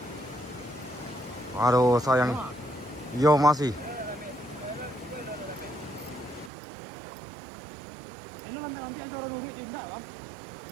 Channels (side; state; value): left; drops out; at 6.5 s